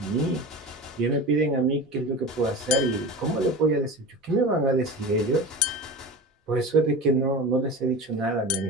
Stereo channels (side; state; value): both; normal; correlation 0.31